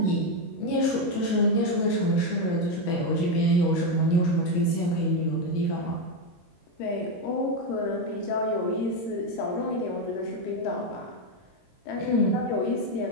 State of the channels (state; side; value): late; right; 22 ms